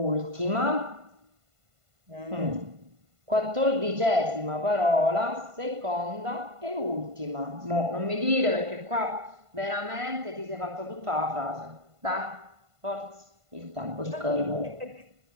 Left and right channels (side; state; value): left; late; 1.5 ms